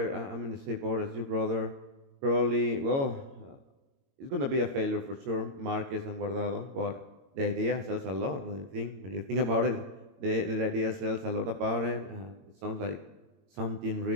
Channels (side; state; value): left; late; 22 ms